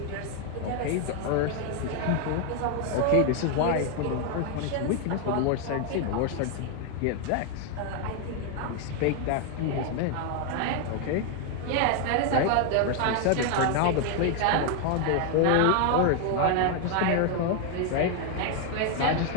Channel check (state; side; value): different; both; correlation 0.01